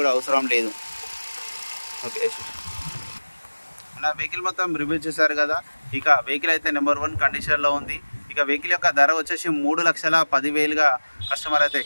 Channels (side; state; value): both; inverted; correlation -1.00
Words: కూడా అవసరం లేదు. ఓకే, నా వెహికల్ మొత్తం రివ్యూ చేశారు కదా. ఇక వెహికల్ అయితే నెంబర్ 1 కండిషన్లో ఉంది. ఇక వెహికల్ యొక్క ధర వచ్చేసి 3,10,000గా కస్టమర్ అయితే